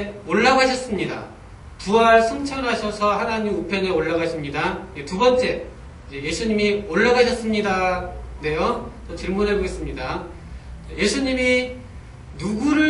올라가셨습니다. 부활 승천하셔서 하나님 우편에 올라가십니다. 두 번째, 예수님이 올라가셨습니다. 네요. 질문해 보겠습니다. 예수님이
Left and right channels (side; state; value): both; identical; correlation 1.00